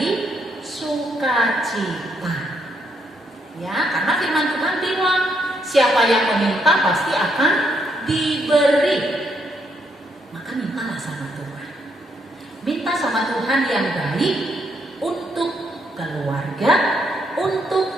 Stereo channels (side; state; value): both; normal; correlation 0.75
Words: sukacita. Ya, karena firman Tuhan bilang, siapa yang meminta pasti akan diberi. Maka mintalah sama Tuhan. Minta sama Tuhan yang baik untuk keluarga,